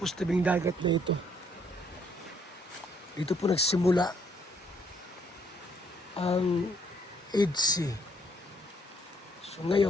sa tabing dagat na ito. Dito po nagsimula ang IDSI. So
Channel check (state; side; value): normal; both; correlation 0.67